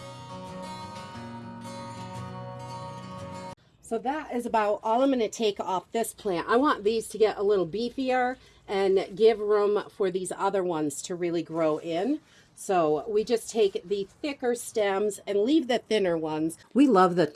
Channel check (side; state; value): both; identical; correlation 1.00